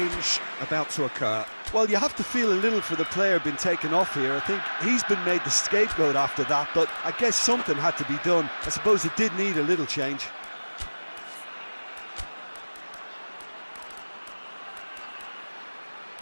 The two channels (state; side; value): inverted; both; correlation -1.00